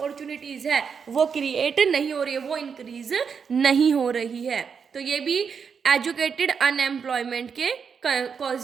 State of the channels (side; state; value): left; quieter; 6.3 dB